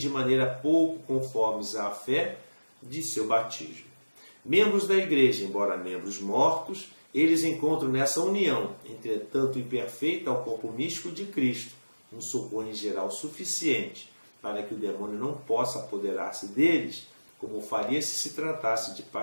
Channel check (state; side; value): inverted; both; correlation -1.00